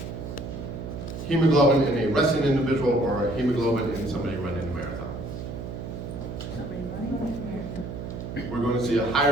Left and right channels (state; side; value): noise; right; hum, 7 dB below the sound